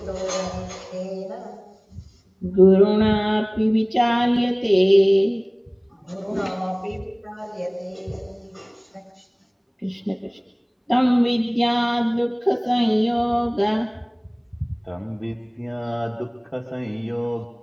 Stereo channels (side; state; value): both; identical; correlation 1.00